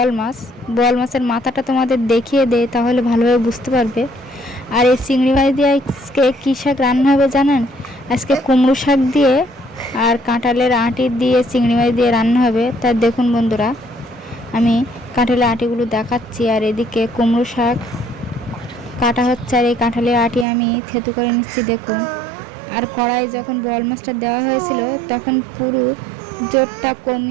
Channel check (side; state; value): left; drops out; at 20.5 s